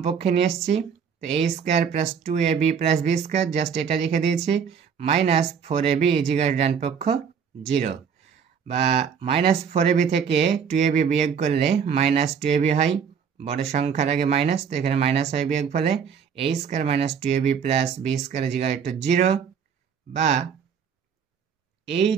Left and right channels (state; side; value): quieter; left; 7.0 dB